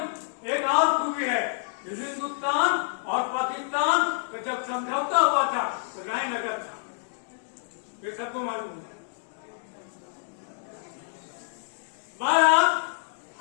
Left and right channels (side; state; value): right; silent; digital silence